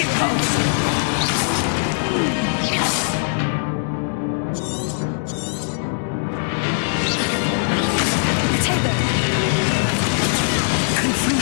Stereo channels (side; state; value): right; silent; digital silence